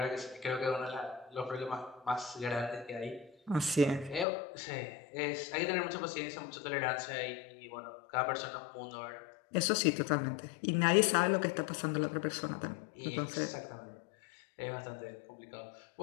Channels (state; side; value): drops out; right; at 4.2 s